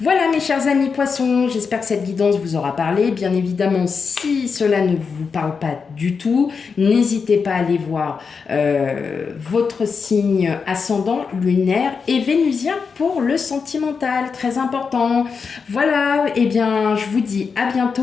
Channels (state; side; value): quieter; right; 5.5 dB